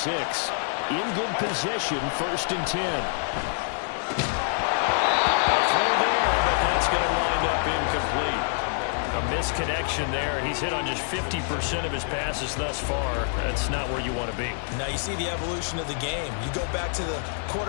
In good position, 1st and 10. A throw there, but that's going to wind up incomplete. A misconnection there. He's hit on just 50% of his passes thus far. That's not where you want to be. Now you see the evolution of the game. You go back to the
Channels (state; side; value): silent; right; digital silence